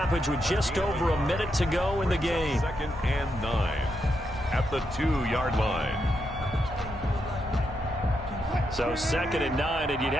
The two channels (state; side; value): normal; both; correlation 0.82